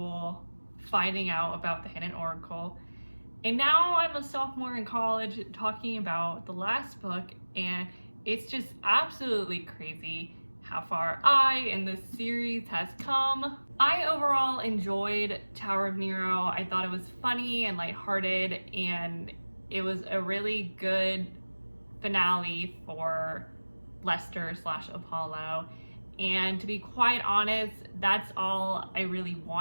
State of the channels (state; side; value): inverted; both; correlation -1.00